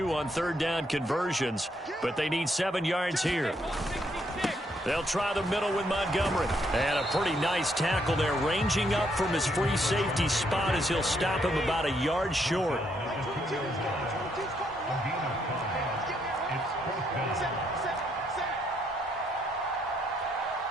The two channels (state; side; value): normal; both; correlation 0.74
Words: on 3rd down conversions, but they need 7 yards here. They'll try the middle with Montgomery. And a pretty nice tackle there, ranging up from his free safety spot as he'll stop him about a yard short.